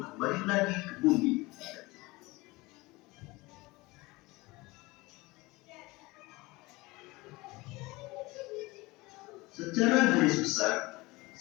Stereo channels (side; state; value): right; quieter; 22.3 dB